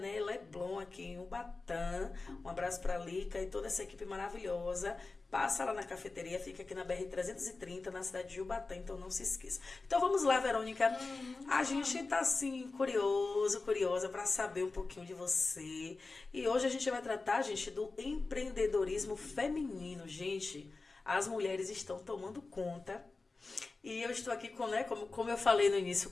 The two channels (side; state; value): right; quieter; 3.7 dB